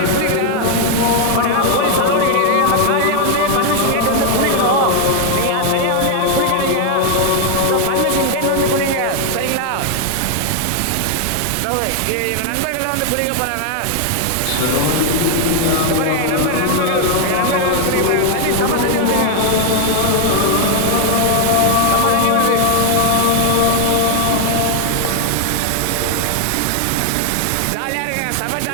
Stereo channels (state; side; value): different; both; correlation 0.00